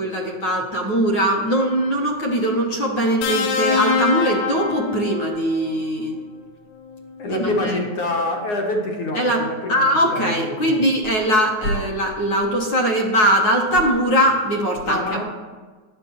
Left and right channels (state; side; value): late; right; 9.3 ms